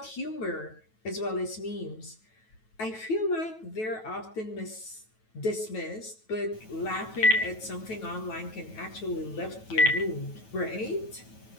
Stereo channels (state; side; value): late; right; 9.2 ms